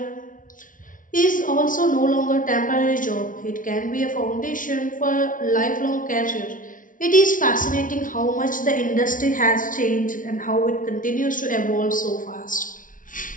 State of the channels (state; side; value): late; right; 0.38 ms